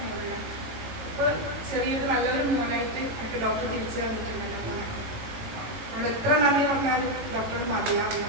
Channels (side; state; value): left; late; 18 ms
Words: മോനെ. ഇപ്പോൾ ചെറിയൊരു നല്ലൊരു മോനായിട്ട് എനിക്ക് ഡോക്ടർ തിരിച്ചു തന്നിട്ടുണ്ട് മോനെ. അവിടെ എത്ര നന്ദി പറഞ്ഞാലും ഡോക്ടർ മതിയാവില്ല.